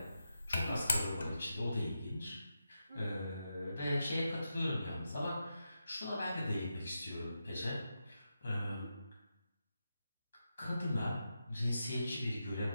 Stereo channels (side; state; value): both; inverted; correlation -0.88